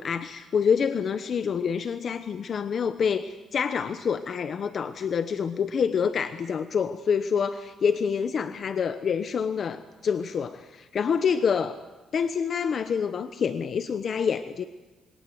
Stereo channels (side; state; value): right; quieter; 6.3 dB